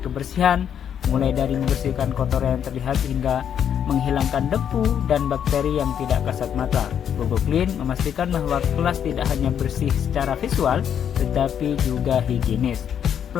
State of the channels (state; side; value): quieter; right; 8.7 dB